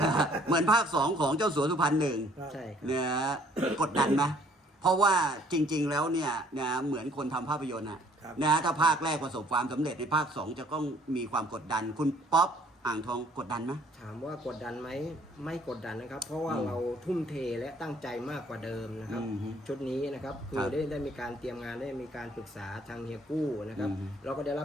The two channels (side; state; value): both; normal; correlation 0.59